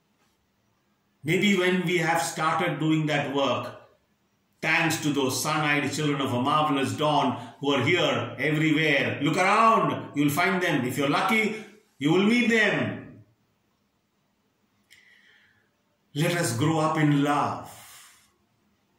Maybe when we have started doing that work, thanks to those sun-eyed children of a marvelous dawn who are here everywhere. Look around. You'll find them. If you're lucky, you will meet them. Let us grow up in love.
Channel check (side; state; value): both; identical; correlation 1.00